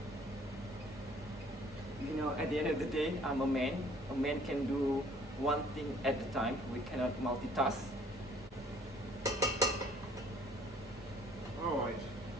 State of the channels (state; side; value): normal; both; correlation 0.57